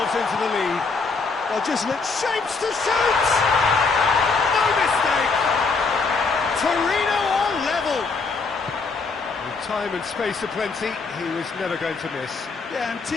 into the lead. Well, just let Shapes to shoot! No mistake! Torino on level! With time and space aplenty, he was never going to miss. Yeah, and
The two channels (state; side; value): quieter; right; 4.4 dB